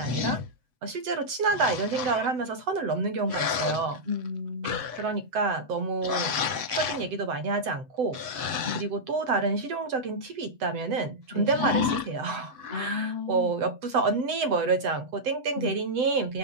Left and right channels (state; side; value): late; left; 7.9 ms